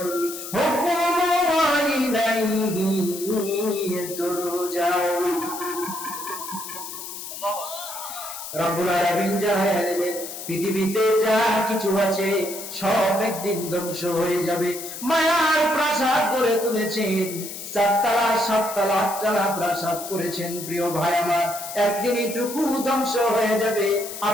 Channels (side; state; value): left; noise; hiss, 9 dB below the sound